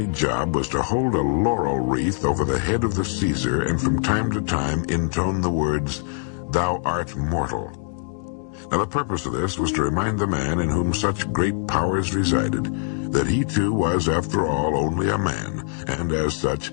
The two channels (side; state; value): right; silent; 59 dB below the other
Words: job was to hold a laurel wreath over the head of the Caesar and from time to time intone the words, "Thou art mortal." Now the purpose of this was to remind the man in whom such great powers resided that he too was, after all, only a man, and as such,